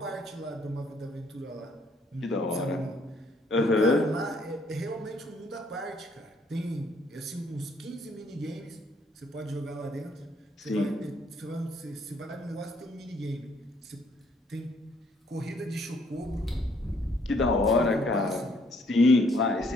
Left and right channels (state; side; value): normal; both; correlation 0.66